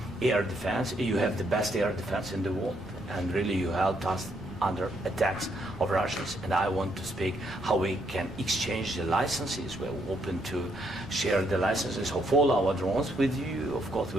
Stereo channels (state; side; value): normal; both; correlation 0.74